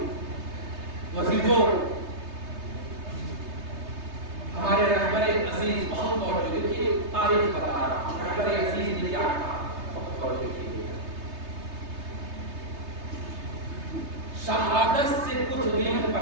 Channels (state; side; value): late; left; 3.3 ms